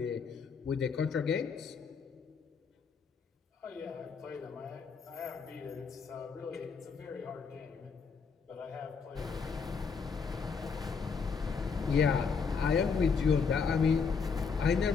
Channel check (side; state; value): right; quieter; 5.5 dB